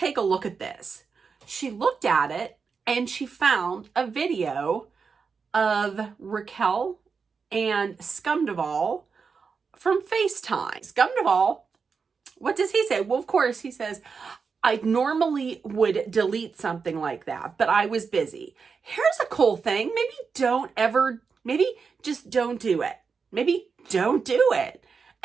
a look at this. She looked at it and she found a video of Raquel and Scumduvall from FaceTime. Scumduvall, what does he say? Well, of course, he says, I normally would delete something like that, but I was busy. Here's a cool thing. Maybe just don't do it. Maybe don't do it.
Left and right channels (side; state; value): left; quieter; 5.4 dB